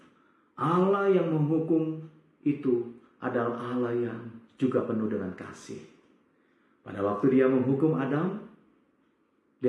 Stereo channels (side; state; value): both; identical; correlation 1.00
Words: Allah yang menghukum itu adalah Allah yang juga penuh dengan kasih. Pada waktu Dia menghukum Adam,